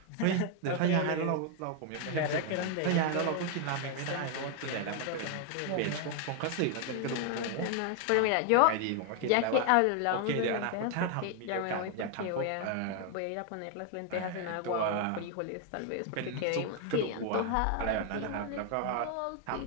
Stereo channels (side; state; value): both; different; correlation 0.01